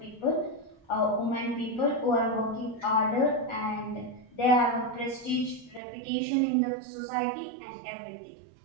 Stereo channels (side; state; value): left; drops out; at 5.8 s